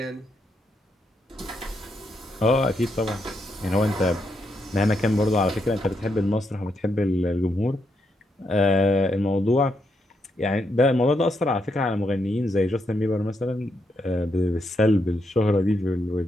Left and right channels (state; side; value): normal; both; correlation 0.80